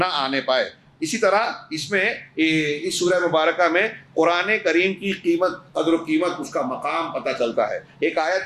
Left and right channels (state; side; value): identical; both; correlation 1.00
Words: آنے پائے. اسی طرح اس میں اس سورہ مبارکہ میں قرآن کریم کی قیمت، قدر و قیمت، اس کا مقام پتہ چلتا ہے۔ ایک